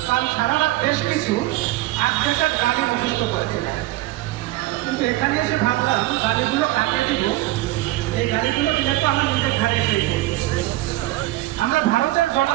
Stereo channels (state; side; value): quieter; left; 17.5 dB